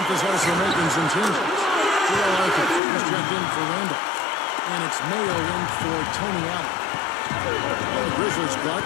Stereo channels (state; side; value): drops out; right; at 2.8 s